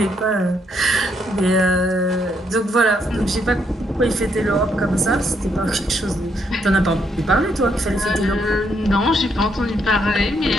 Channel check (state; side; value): normal; both; correlation 0.74